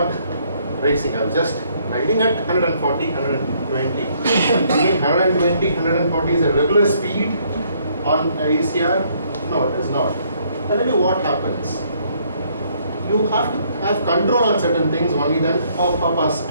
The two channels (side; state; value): both; inverted; correlation -0.67